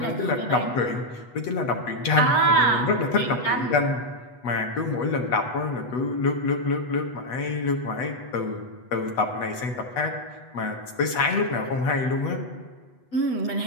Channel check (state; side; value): late; right; 8.1 ms